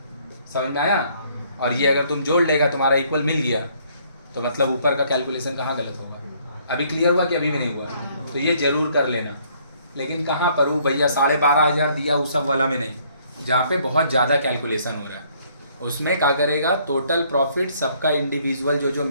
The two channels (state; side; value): inverted; both; correlation -0.64